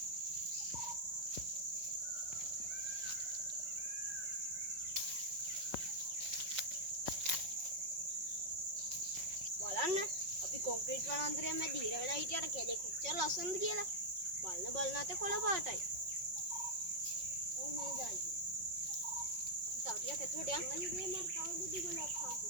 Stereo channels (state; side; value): late; left; 5.4 ms